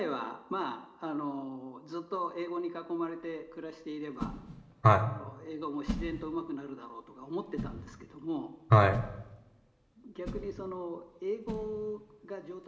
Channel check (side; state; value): both; identical; correlation 1.00